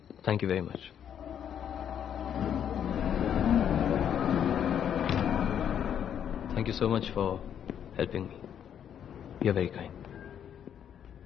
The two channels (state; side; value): quieter; right; 9.0 dB